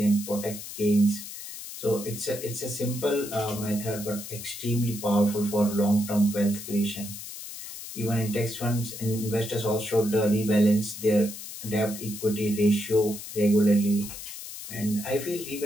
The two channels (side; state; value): left; noise; hiss, 11 dB below the sound